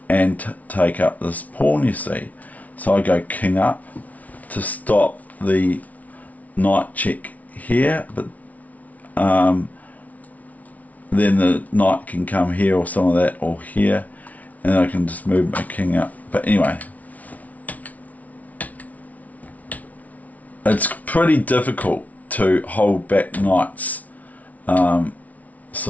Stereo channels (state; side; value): late; right; 0.071 ms